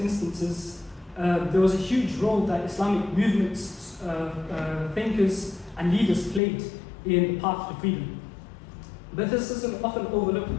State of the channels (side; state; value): right; drops out; at 6.4 s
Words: there was a huge role that Islamic movements, thinkers, and leaders played in the path to freedom. But this is an often